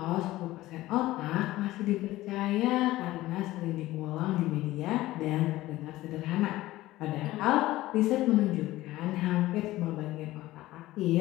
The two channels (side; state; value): right; quieter; 16.8 dB